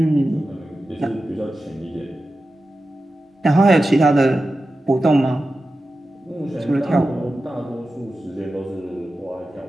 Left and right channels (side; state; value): both; normal; correlation 0.93